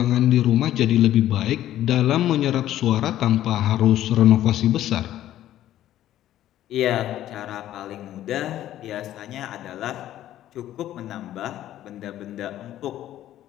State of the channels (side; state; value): right; quieter; 12.8 dB